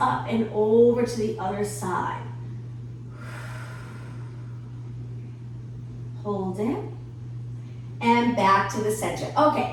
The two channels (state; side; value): identical; both; correlation 1.00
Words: up and over to the other side. Hold it. And back to the center.